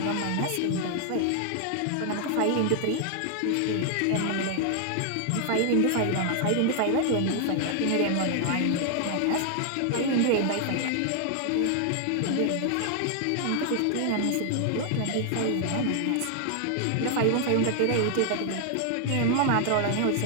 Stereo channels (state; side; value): different; both; correlation 0.00